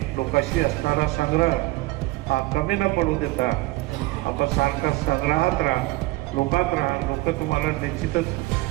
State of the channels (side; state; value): left; quieter; 20.5 dB